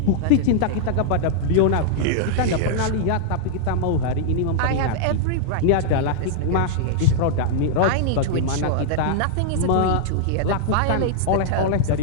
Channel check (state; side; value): different; both; correlation -0.01